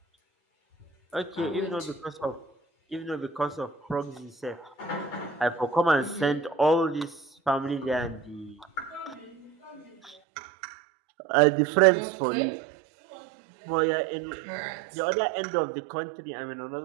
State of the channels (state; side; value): drops out; left; at 10.2 s